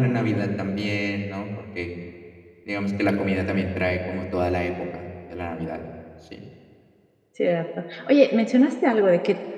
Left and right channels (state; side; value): identical; both; correlation 1.00